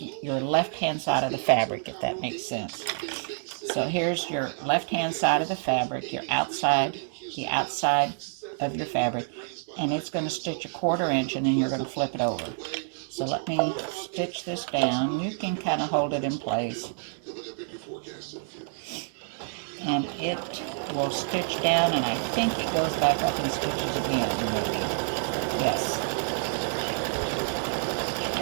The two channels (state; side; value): silent; left; 59 dB below the other